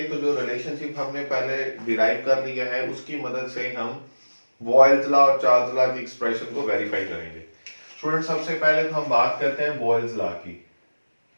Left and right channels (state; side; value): inverted; both; correlation -1.00